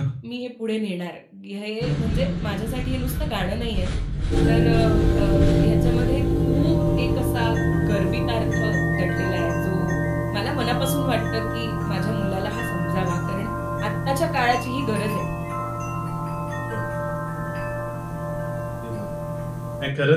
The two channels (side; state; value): both; identical; correlation 1.00